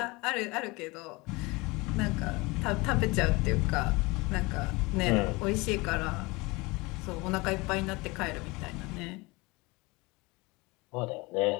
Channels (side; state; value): right; quieter; 24.4 dB